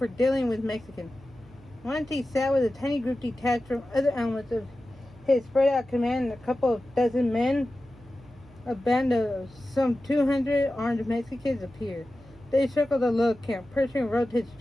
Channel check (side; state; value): right; noise; hum, 24 dB below the sound